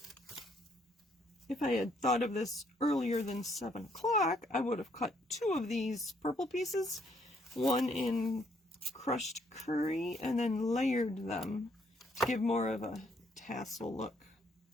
If I had thought of this earlier than 7 o'clock, I would have cut 2 of these purple pieces, one in crushed curry, and then layered them to give more of a tassel look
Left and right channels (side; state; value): both; normal; correlation 0.69